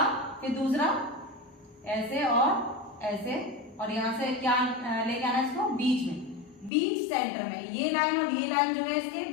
फिर दूसरा ऐसे और ऐसे, और यहां से क्या लेके आना इसको, बीच में, बीच सेंटर में, ये लाइन और ये लाइन जो है इसके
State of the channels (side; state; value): right; drops out; at 6.7 s